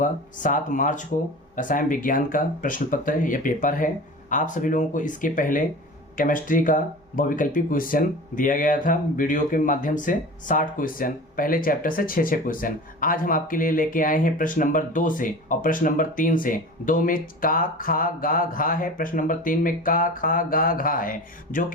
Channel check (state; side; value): normal; both; correlation 0.35